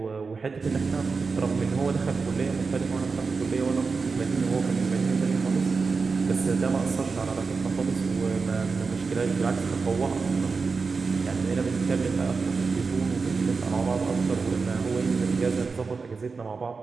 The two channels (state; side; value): quieter; left; 4.6 dB